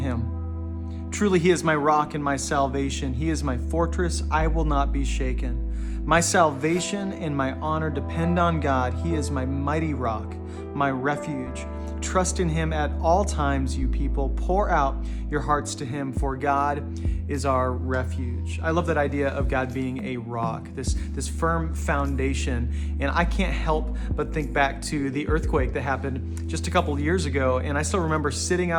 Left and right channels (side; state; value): both; identical; correlation 1.00